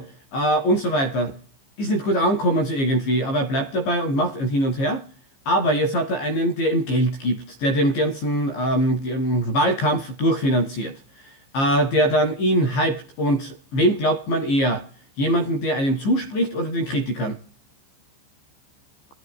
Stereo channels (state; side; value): late; right; 15 ms